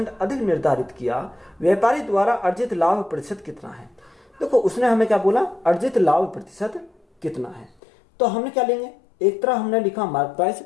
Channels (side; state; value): right; drops out; at 7.8 s